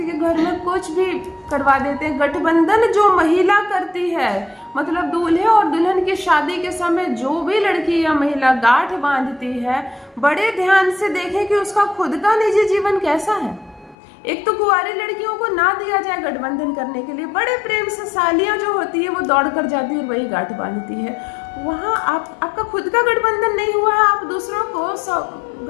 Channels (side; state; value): right; drops out; at 14.0 s